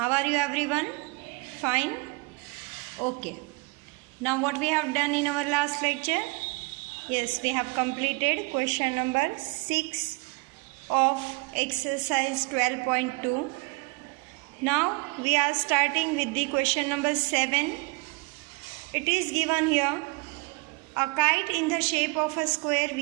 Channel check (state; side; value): quieter; left; 28.3 dB